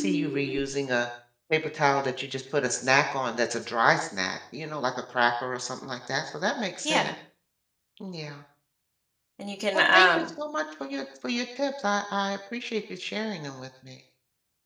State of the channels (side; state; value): both; identical; correlation 1.00